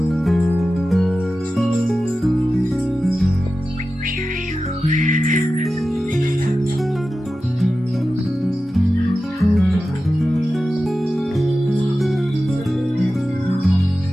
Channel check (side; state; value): both; normal; correlation 0.93